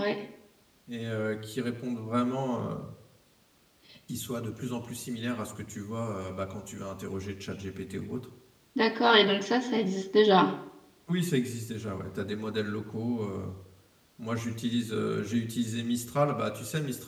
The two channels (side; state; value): both; identical; correlation 1.00